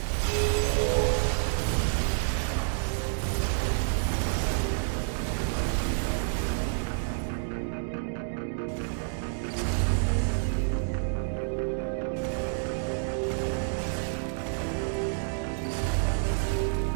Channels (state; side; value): silent; left; digital silence